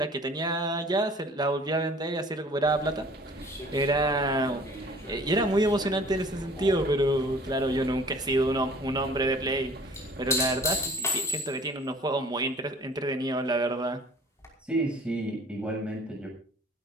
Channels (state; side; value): normal; both; correlation 0.50